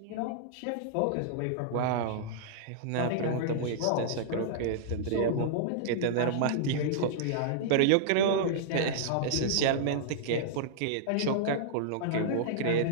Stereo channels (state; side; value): different; both; correlation -0.02